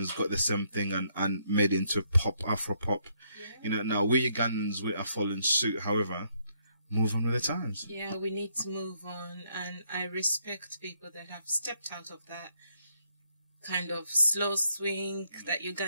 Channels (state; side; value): inverted; both; correlation -0.73